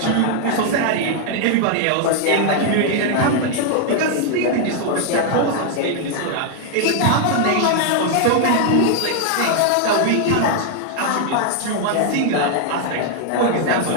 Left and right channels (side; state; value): both; different; correlation 0.00